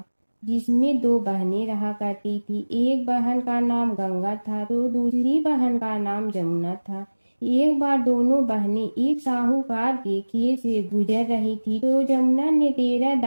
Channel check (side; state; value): both; inverted; correlation -1.00